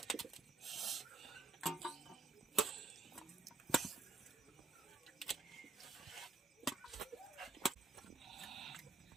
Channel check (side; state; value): left; quieter; 3.6 dB